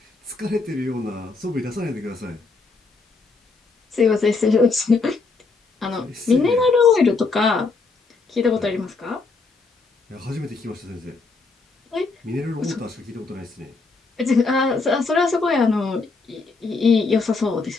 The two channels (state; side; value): quieter; right; 4.1 dB